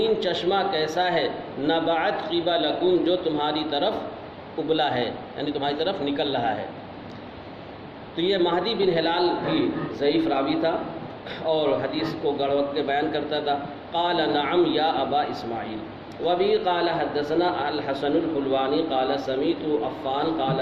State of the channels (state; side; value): identical; both; correlation 1.00